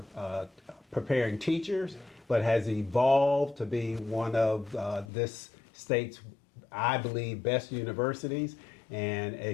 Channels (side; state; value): right; drops out; at 5.1 s